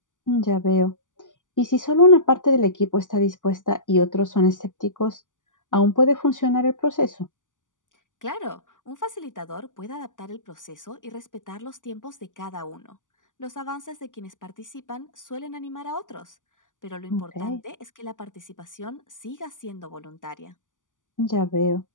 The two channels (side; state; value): right; late; 0.87 ms